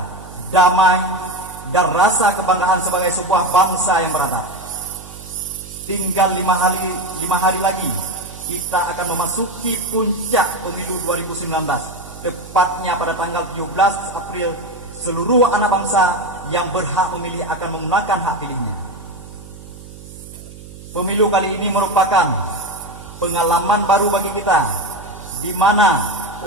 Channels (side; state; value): right; noise; hum, 16 dB below the sound